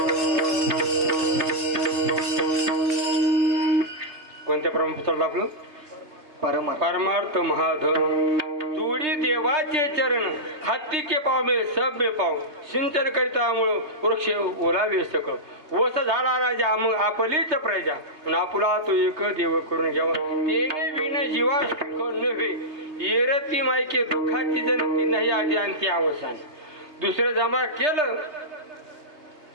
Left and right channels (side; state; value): left; late; 3.3 ms